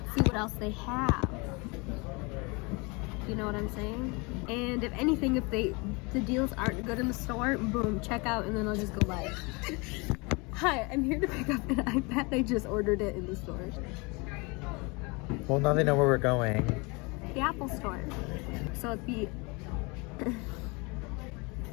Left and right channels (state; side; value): quieter; right; 28.3 dB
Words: See what else they have. You know what I'm saying? And if anything, if the deals aren't good in the store, boom, check out, and then I'll just go buy it. Hi, I'm here to pick up an iPad. I just ordered it in the store. Well, now they know where we're going. The Apple store. So it'd be